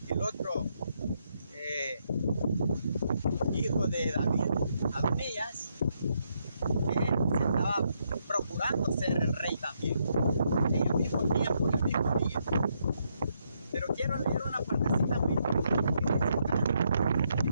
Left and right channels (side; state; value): both; inverted; correlation -0.76